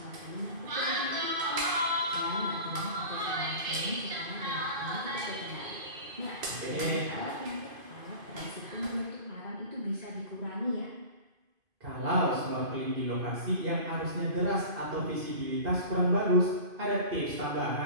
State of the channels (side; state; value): left; late; 2.5 ms